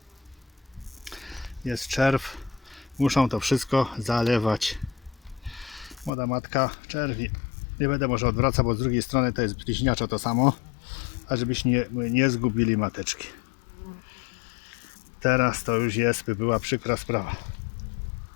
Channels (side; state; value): right; drops out; at 6.1 s